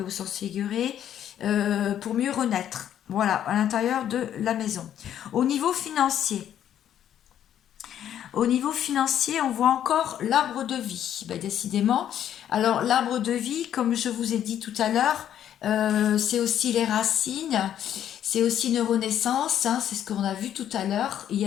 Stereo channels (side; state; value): right; quieter; 10.4 dB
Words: et au sens figuré, pour mieux renaître. Voilà, à l'intérieur de la maison. Au niveau financier, on voit encore l'arbre de vie. Ben, décidément. Alors, l'arbre de vie, comme je vous ai dit tout à l'heure, c'est aussi les racines, c'est aussi une renaissance, hein, c'est ce qu'on a vu tout à l'heure. Il y